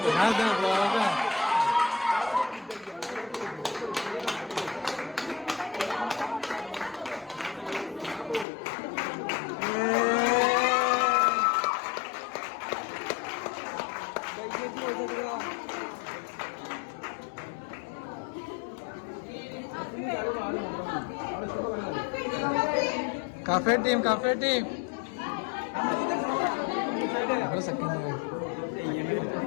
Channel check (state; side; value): drops out; right; at 8.5 s